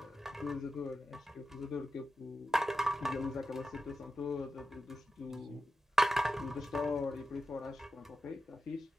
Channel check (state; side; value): normal; both; correlation 0.90